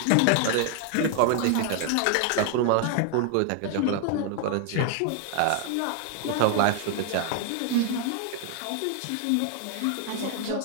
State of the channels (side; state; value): both; different; correlation 0.00